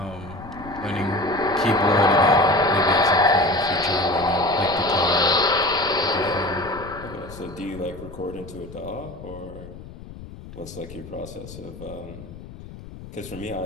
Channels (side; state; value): left; noise; rumble, 15 dB below the sound